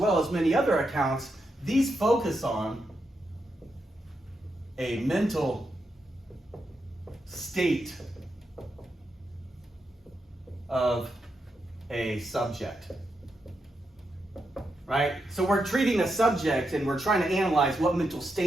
as many other accounts, these focus on a mental state of a subject, right? So we're treating a subject and we're trying to analyze what mental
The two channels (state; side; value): normal; both; correlation 0.84